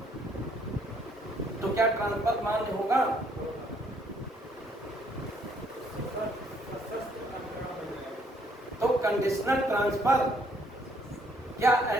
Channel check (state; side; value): normal; both; correlation 0.66